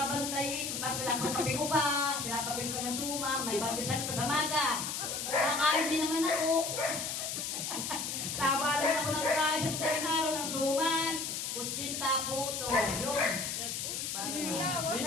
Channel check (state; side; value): noise; left; hiss, 3 dB below the sound